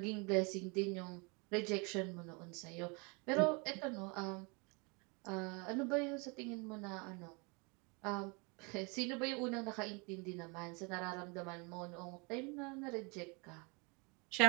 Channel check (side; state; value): left; quieter; 30.7 dB